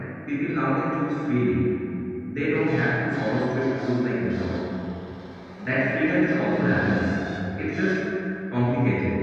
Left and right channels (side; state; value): both; identical; correlation 1.00